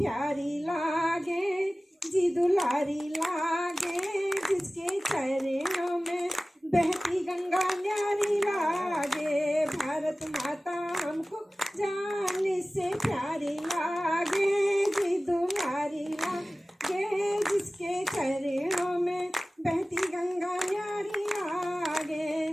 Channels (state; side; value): normal; both; correlation 0.97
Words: लागे, जी दुलारी लागे, जिसके चरणों में बहती गंगा न्यारी लागे। भारत माता हमको जान से प्यारी लागे, जी दुलारी लागे, जिसके चरणों में बहती गंगा न्यारी लागे।